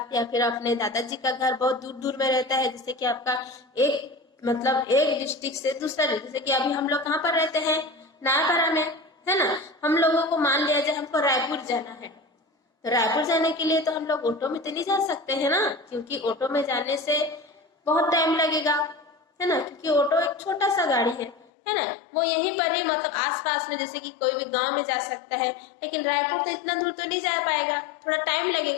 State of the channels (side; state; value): right; drops out; at 21.5 s